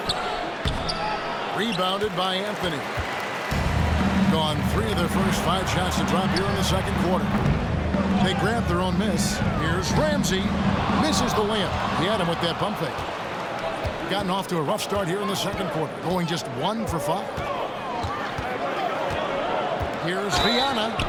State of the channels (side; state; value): both; identical; correlation 1.00